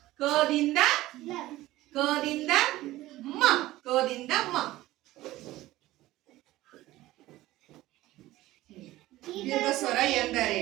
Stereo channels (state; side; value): quieter; left; 16.7 dB